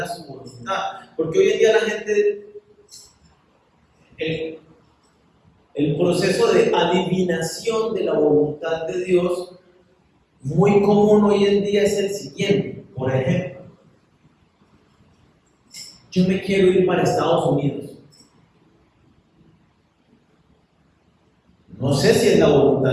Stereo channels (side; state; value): both; identical; correlation 1.00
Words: su voluntad? Porque hoy en día la gente, el proceso de adivinación de la voluntad de Dios, muy común hoy en día es el siguiente. Por ejemplo, yo me quiero ir para Estados Unidos. No sé si es la